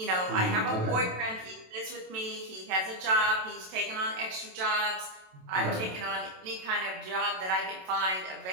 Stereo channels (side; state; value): left; late; 27 ms